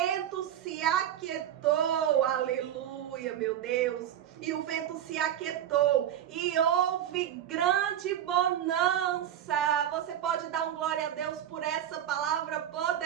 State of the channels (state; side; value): quieter; left; 10.7 dB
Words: se aquietou, aleluia, meu Deus. E o vento se aquietou e houve grande bonança. Você pode dar um glória a Deus por essa palavra